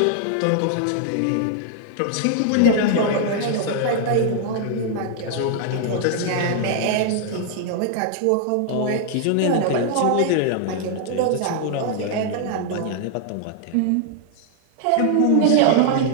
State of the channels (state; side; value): different; both; correlation 0.00